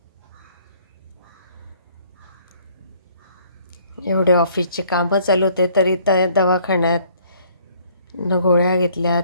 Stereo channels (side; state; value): both; inverted; correlation -0.61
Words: एवढे ऑफिसचे कामं चालू होते तरी त्या दवाखान्यात न गोळ्या घेतल्या,